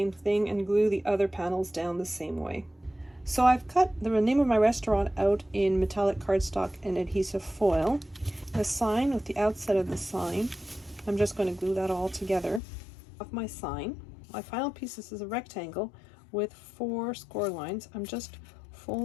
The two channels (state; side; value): drops out; right; at 12.6 s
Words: thing and glue the other panels down the same way. So I've cut the name of my restaurant out in metallic cardstock and adhesive foil. The sign with the outside of the sign, I'm just going to glue that all together. Of my sign, my final piece is a rectangle with 4 score lines. I'm just